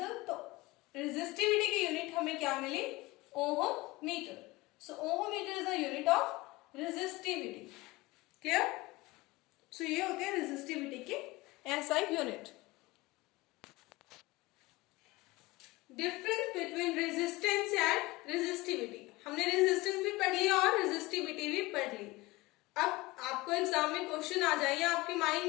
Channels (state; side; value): quieter; right; 21.2 dB